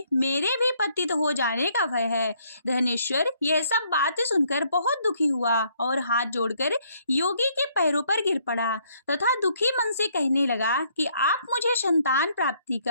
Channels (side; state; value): both; inverted; correlation -0.68